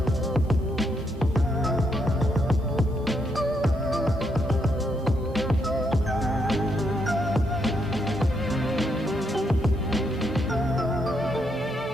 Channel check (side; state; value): both; normal; correlation 0.77